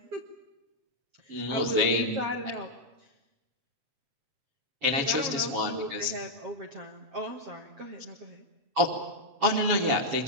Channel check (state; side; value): late; left; 7.2 ms